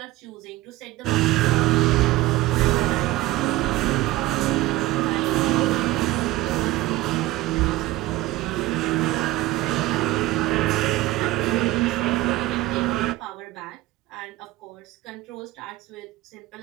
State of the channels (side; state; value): left; quieter; 17.2 dB